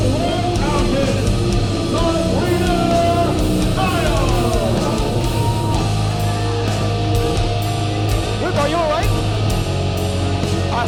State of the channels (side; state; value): both; identical; correlation 1.00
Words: Are you all right? I